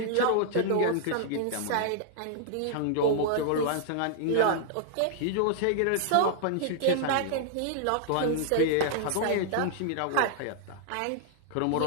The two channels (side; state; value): both; different; correlation -0.01